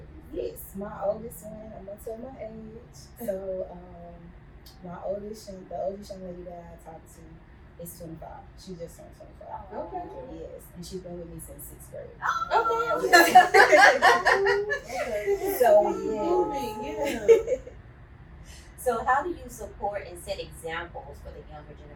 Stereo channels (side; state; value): both; identical; correlation 1.00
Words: Yes, my oldest one, I'm gonna tell my age. So the oldest young lady that I talked to is 25. She just turned 25. Okay. Yes, and she's been with me since 6th grade. Okay. So yeah. So how do you support and set examples for the younger